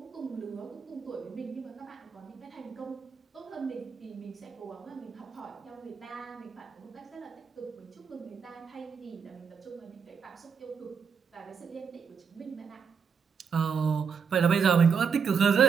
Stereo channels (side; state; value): left; quieter; 6.4 dB